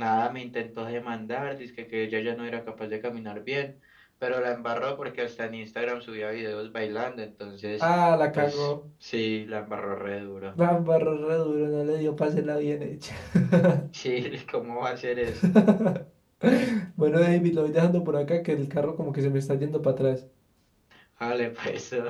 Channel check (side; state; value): both; identical; correlation 1.00